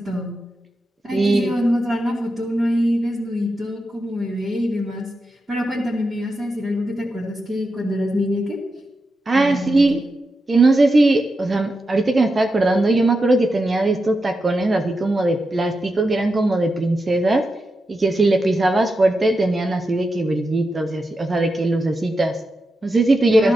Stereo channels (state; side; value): normal; both; correlation 0.88